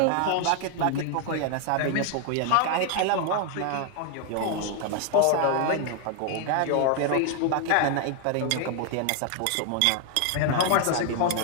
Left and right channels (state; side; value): different; both; correlation 0.00